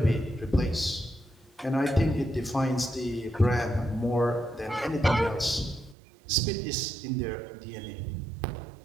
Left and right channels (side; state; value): left; drops out; at 6.0 s